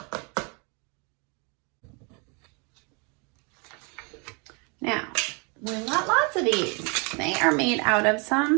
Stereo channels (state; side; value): quieter; left; 33.2 dB